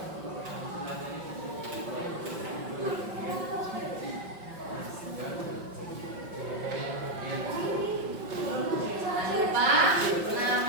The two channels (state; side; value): late; left; 5.4 ms